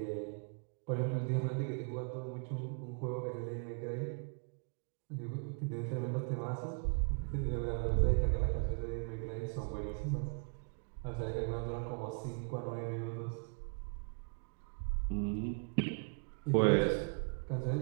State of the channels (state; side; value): quieter; left; 39.7 dB